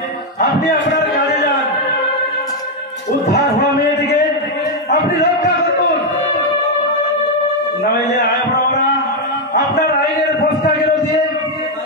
আপনি আপনার কাজে যান। উদ্ধার হওয়া মেয়েটিকে আপনি রক্ষা করুন, নইলে আমরা আপনার আইনের ফস্তাগুলো দিয়ে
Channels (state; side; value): normal; both; correlation 0.02